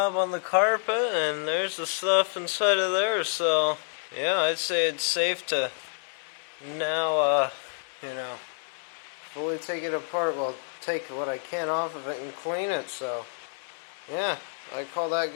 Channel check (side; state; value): right; silent; 59 dB below the other